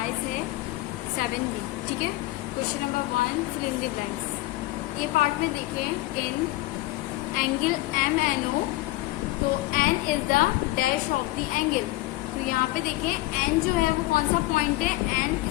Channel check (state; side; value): quieter; right; 18.9 dB